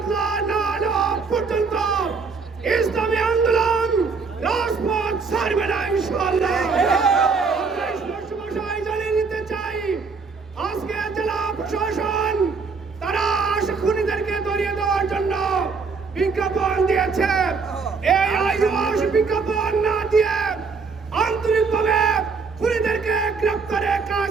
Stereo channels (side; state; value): left; quieter; 4.8 dB